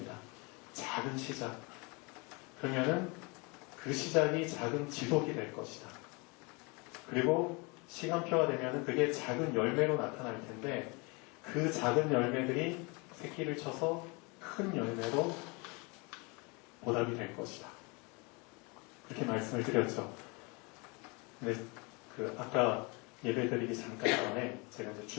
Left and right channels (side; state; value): right; quieter; 29.3 dB